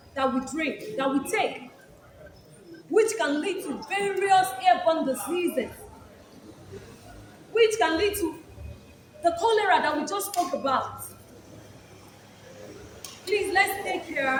that we drink, that we take, which can lead to various airborne diseases, which can lead to the cholera that we just spoke about. Please, let's take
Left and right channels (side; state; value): both; identical; correlation 1.00